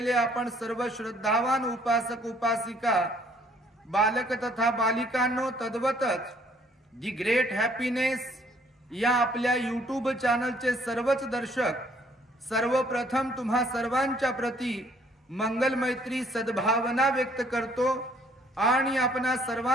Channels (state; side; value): normal; both; correlation 0.62